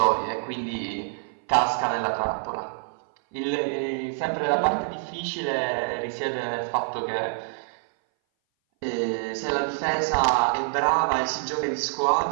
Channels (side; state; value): left; silent; 58 dB below the other